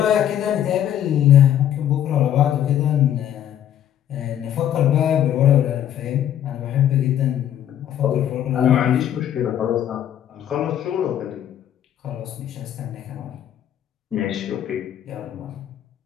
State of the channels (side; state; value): right; quieter; 10.7 dB